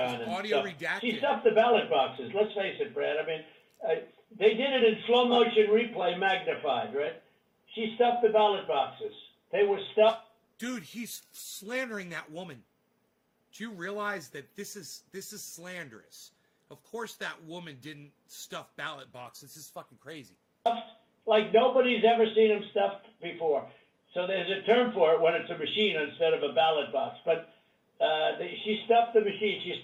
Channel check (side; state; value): both; identical; correlation 1.00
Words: And Audio stuffed. redacted. She stuffed the ballot boxes. Let's face it, Brad. I mean, they did it in slow motion replay, magnified, right? She stuffed the ballot boxes. They were stuffed. Dude, he's slandering that woman. Do you realize that this is slanderous? Of course that woman didn't stuff ballot boxes. This is fucking crazy. Like nobody's ever seen them stuffed before. So there's a term for it when it's a machine instead of a ballot box. But she stuffed the machine. She